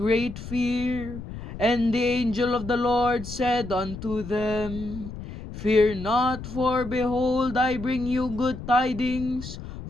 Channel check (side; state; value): left; noise; rumble, 10 dB below the sound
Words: fear. And the angel of the Lord said unto them, Fear not, for behold, I bring you good tidings